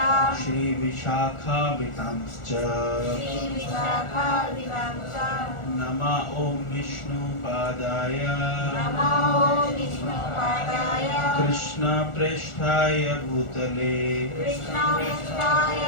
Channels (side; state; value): right; late; 1.4 ms